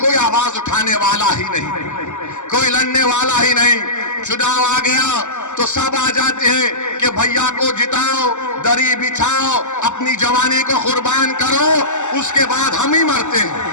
आवाज उठाने वाला ही नहीं, कोई लड़ने वाला ही नहीं। चुनाव आ गया तो सब आ जाते हैं कि भैया को जिताओ, दरी बिछाओ, अपनी जवानी को कुर्बान करो, उसके बाद हम ही मरते हैं,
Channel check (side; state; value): right; late; 0.84 ms